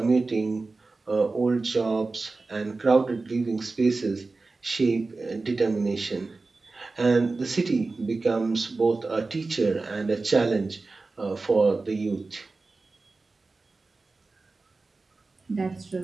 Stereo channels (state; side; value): quieter; left; 3.7 dB